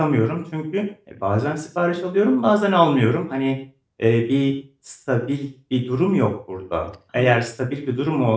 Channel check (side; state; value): both; identical; correlation 1.00